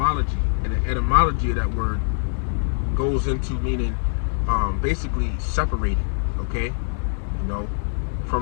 and the etymology of that word goes into meaning basically separated. Okay, you know,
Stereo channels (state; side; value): silent; right; 63 dB below the other